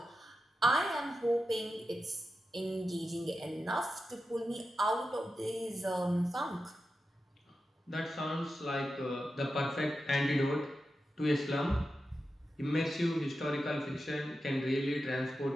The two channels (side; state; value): both; normal; correlation 0.90